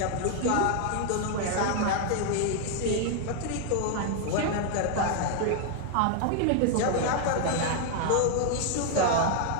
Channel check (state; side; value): different; both; correlation 0.00